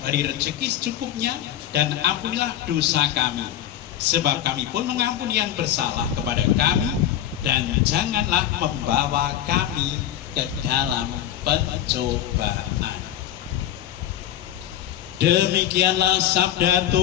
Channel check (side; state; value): right; quieter; 11.6 dB